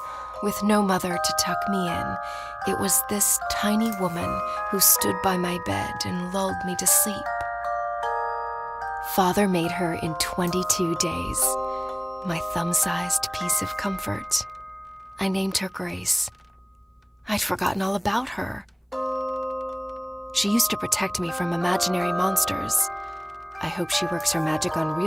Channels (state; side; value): identical; both; correlation 1.00